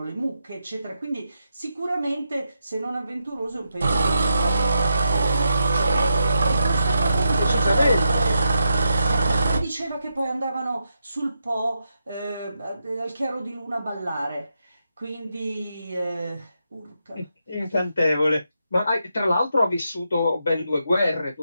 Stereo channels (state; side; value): inverted; both; correlation -0.84